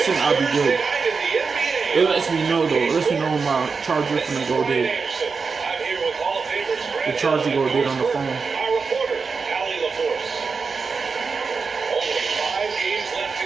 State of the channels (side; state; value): left; quieter; 5.0 dB